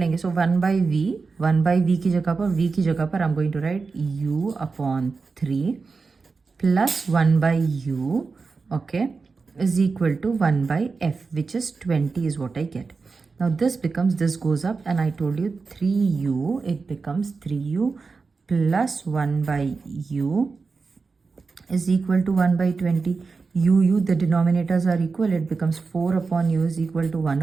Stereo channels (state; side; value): quieter; left; 4.5 dB